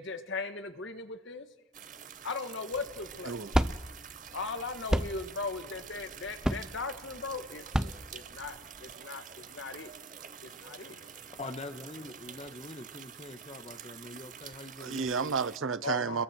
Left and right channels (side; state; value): both; normal; correlation 0.36